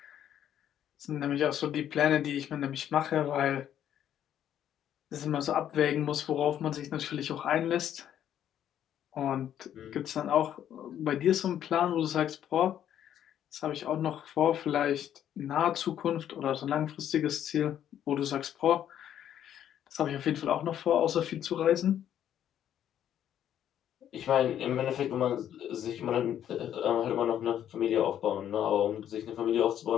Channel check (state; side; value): quieter; right; 10.4 dB